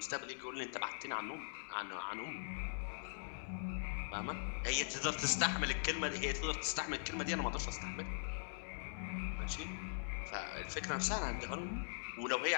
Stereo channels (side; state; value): right; silent; digital silence